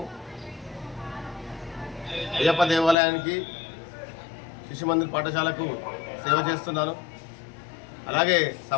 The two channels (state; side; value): drops out; right; at 3.0 s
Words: అయ్యప్ప దేవాలయానికి, శిశు మందిర్ పాఠశాలకు సేవ చేస్తున్నాను. అలాగే